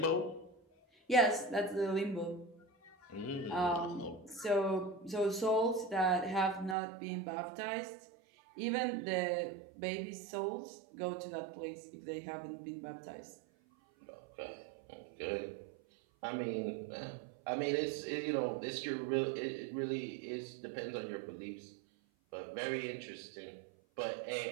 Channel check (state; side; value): drops out; left; at 6.8 s